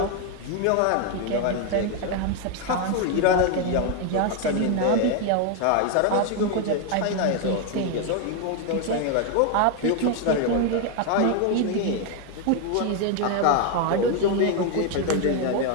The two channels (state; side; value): different; both; correlation 0.01